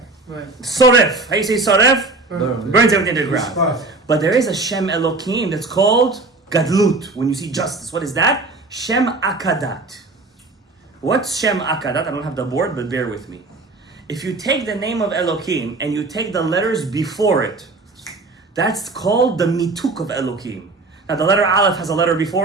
soref. How you say soref? Burns everything to the ground. But there is a Shem Elokim that's called Gadlut. When you see justice, what is that? Shem Akadat. What's Shem Akadat? I don't have the board, but bear with me. If you take the name of Elokim and you take the letters before it, that's called the mituk of Elokim. Now the letter Aleph has a letter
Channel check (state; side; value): quieter; left; 3.4 dB